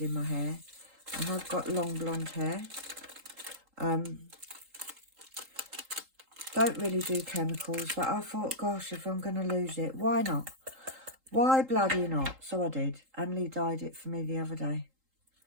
in my hair. I have got long blonde hair. Don't really do chemicals, but I thought, gosh, if I'm going to lose it, why not? Why bloody not? So I did. Emily dyed it for me the other day.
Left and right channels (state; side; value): late; left; 3.8 ms